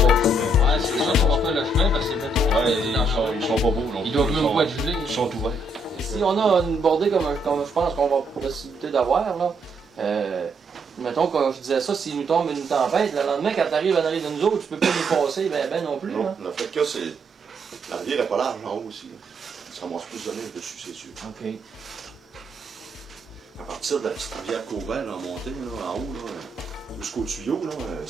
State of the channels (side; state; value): both; normal; correlation 0.74